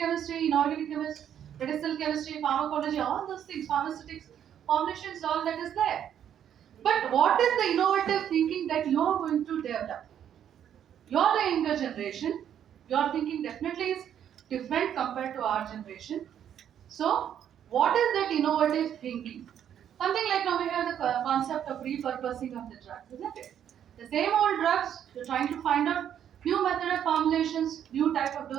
inorganic chemistry, medicinal chemistry, pharmacology, all those things, pharmaceutics, formulations, all that is there. But what is the innovative thinking that you are going to develop? You're the younger generation. Your thinking definitely is different compared to our generation. So, what is that innovative thinking? Something like now we have the concept of repurposing of the drugs, isn't it? The same old drugs, you're trying to find out new method of formulations, new type of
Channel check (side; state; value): left; quieter; 9.6 dB